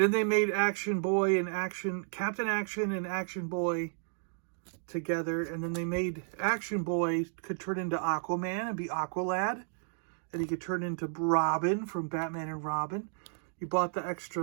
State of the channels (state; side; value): silent; left; digital silence